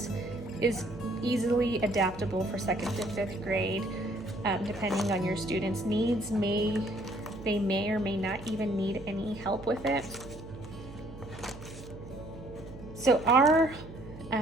is easily adaptable for 2nd to 5th grade, depending on your students' needs. They may or may not even need any help with it. So our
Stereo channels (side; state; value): right; noise; hum, 15 dB below the sound